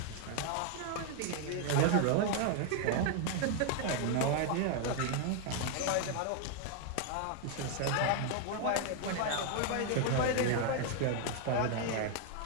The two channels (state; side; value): different; both; correlation 0.00